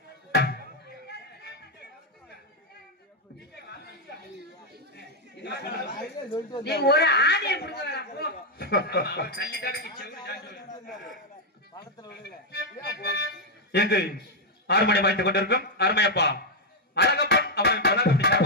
நீ ஒரு ஆணியை புடிக்க வேணாம் போ. எங்கு 6 மணி வாய்த்துக் கொண்டிருக்கும் அருமையப்பா அழகப்பன் அவர்கள் கலாகப்படி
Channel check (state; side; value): normal; both; correlation 0.00